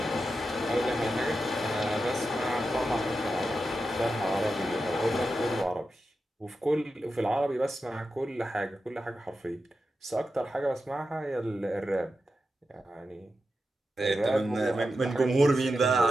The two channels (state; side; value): normal; both; correlation 0.89